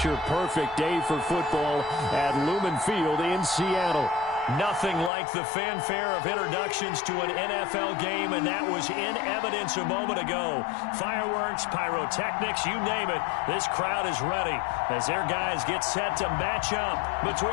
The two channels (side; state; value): right; drops out; at 5.1 s